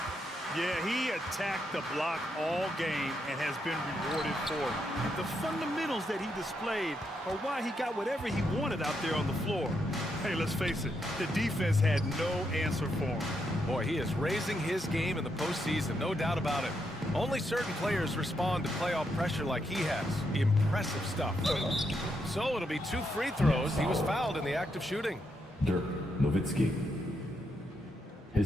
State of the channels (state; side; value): normal; both; correlation 0.80